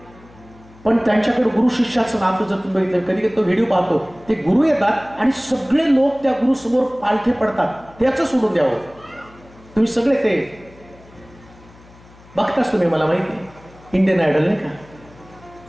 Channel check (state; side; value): noise; left; hum, 24 dB below the sound